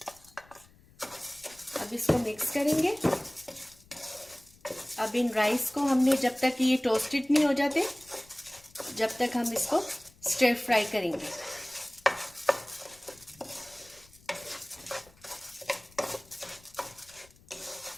अब इसको मिक्स करेंगे। अब इन राइस को हमने जब तक ये टोस्टेड नहीं हो जाते, जब तक हम इसको स्टर फ्राई करेंगे।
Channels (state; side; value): noise; left; rumble, 27 dB below the sound